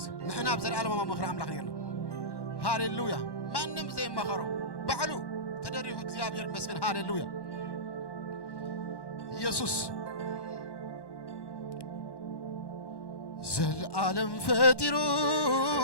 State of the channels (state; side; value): late; right; 1.1 ms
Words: نحن أبزل عالمه ومخر عمل خيرنا هاليلويا ما نم زي ما خرو بعلو تدريه እግዚአብሔር ይመስገን هاليلويا يسوع زل عالم فاترو